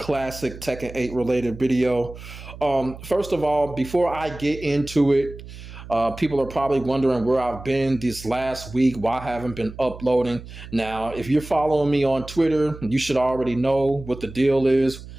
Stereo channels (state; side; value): noise; right; hum, 14 dB below the sound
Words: Tekken 8 related video. First of all, before I get into it, people are probably wondering where I've been this last week, why I haven't been uploading. Now, if you're following me on Twitter, you should already know what the deal is